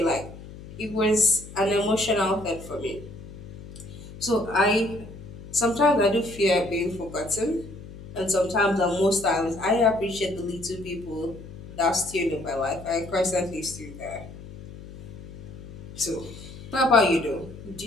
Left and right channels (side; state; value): left; noise; hum, 14 dB below the sound